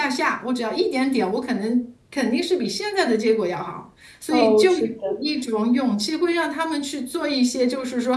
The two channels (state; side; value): identical; both; correlation 1.00